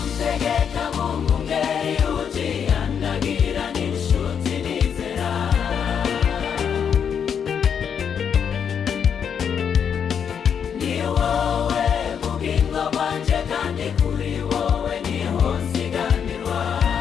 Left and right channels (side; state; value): right; quieter; 7.6 dB